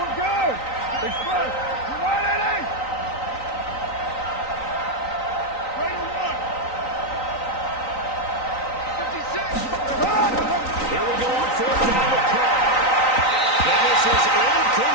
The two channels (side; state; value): right; late; 3.9 ms